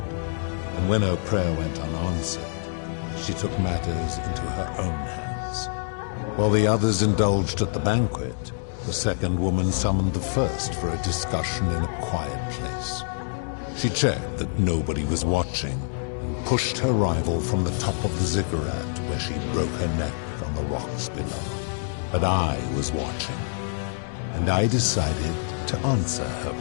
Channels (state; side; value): silent; right; digital silence